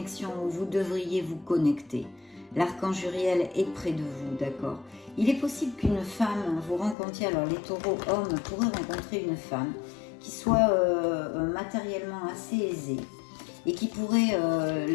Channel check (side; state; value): right; drops out; at 7.0 s